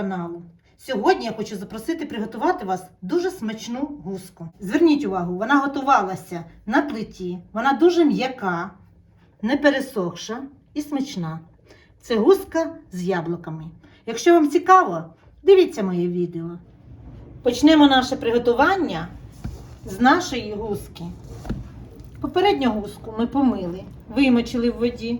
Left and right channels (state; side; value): identical; both; correlation 1.00